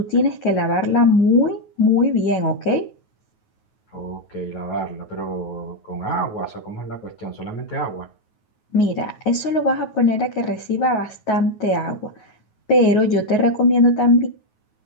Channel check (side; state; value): right; late; 9.4 ms